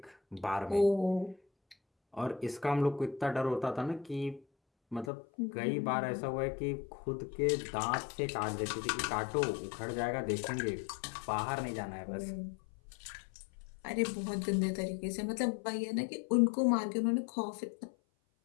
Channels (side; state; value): right; drops out; at 5.1 s